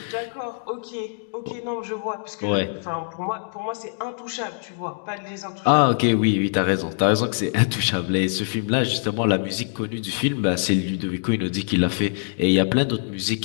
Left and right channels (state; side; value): silent; right; digital silence